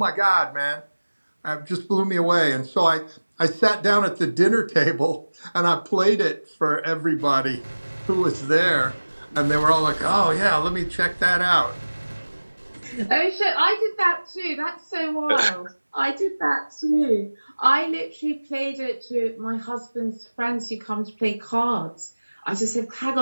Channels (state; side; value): inverted; both; correlation -1.00